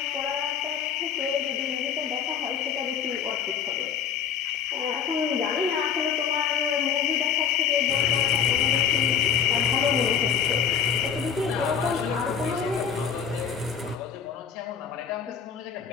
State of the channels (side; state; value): right; quieter; 7.6 dB